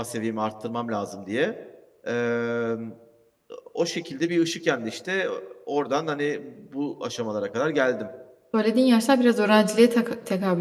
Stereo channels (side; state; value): both; identical; correlation 1.00